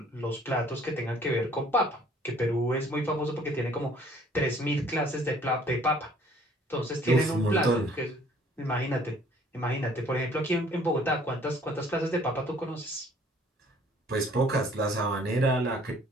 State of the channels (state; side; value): normal; both; correlation 0.57